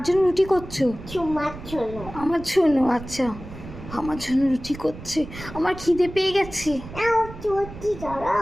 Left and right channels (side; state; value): right; noise; rumble, 13 dB below the sound